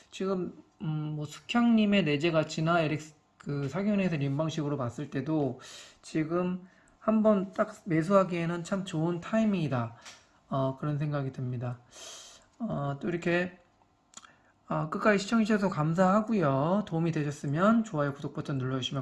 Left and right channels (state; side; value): identical; both; correlation 1.00